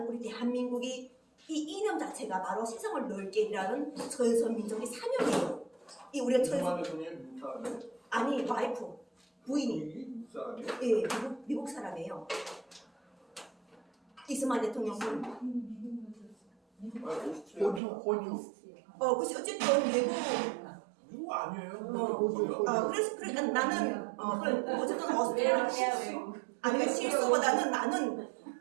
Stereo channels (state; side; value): drops out; left; at 17.8 s